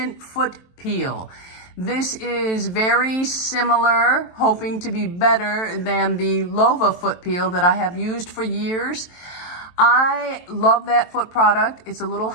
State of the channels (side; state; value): right; late; 23 ms